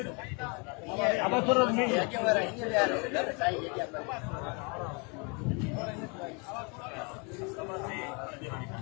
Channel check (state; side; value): quieter; right; 32.6 dB